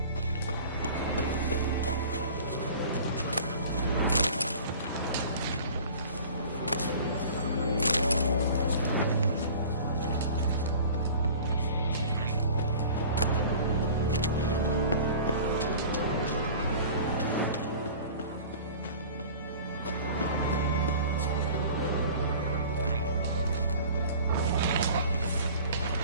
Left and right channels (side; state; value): both; inverted; correlation -0.43